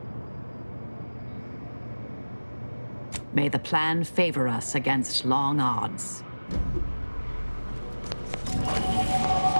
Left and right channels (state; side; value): inverted; both; correlation -1.00